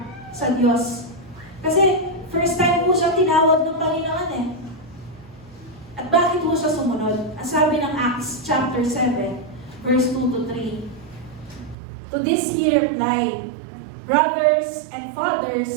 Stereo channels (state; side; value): drops out; left; at 11.8 s